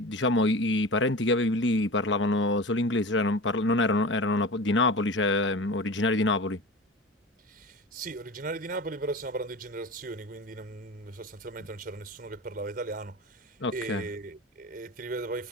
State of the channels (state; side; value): normal; both; correlation 0.32